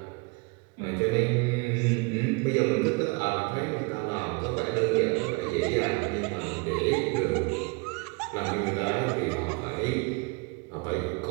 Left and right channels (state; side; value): quieter; left; 29.2 dB